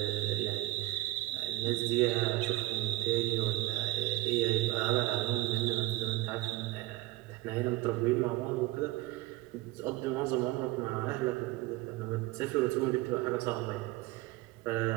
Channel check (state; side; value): quieter; left; 18.4 dB